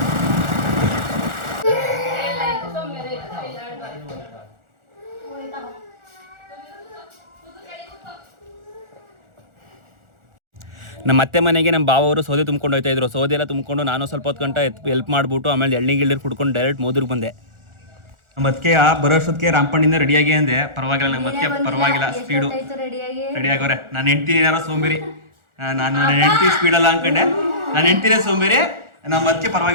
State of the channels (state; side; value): late; left; 1.4 ms